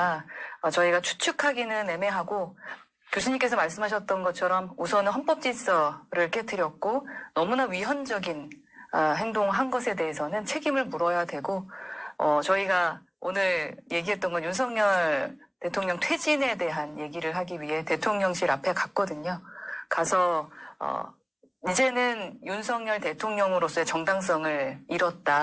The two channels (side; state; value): both; identical; correlation 1.00